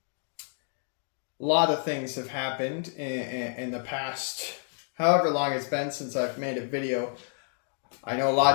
A lot of things have happened in the past, however long it's been since I've made a video. I know a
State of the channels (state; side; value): silent; right; 57 dB below the other